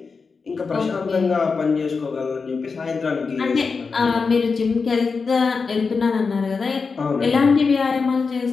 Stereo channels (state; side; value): quieter; right; 4.8 dB